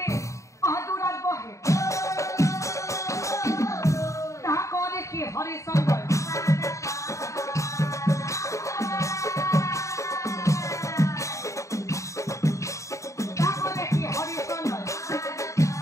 দূৰত বহে তাক দেখি হৰিচন্দ্ৰই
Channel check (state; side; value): late; right; 0.15 ms